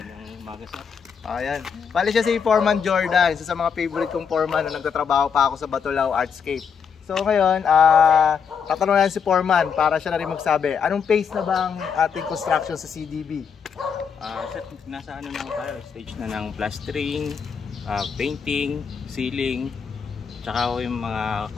Ayan. Bali siya si Foreman Jordan, isa sa mga favorite kong foreman na nagtatrabaho pa ako sa Batulao Artscape. So ngayon, tatanungin si Foreman para siya na rin magsabi, anong phase na ba ang ating construction sa CDB? Nasa ano na tayo, stage na ng plastering, painting, ceiling, tsaka yung mga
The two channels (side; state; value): right; quieter; 6.6 dB